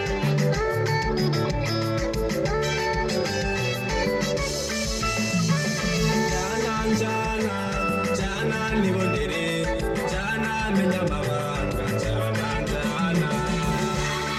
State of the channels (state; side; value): identical; both; correlation 1.00